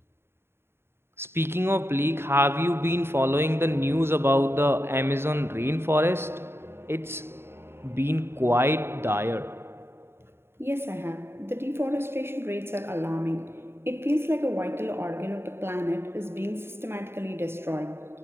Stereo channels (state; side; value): late; left; 0.12 ms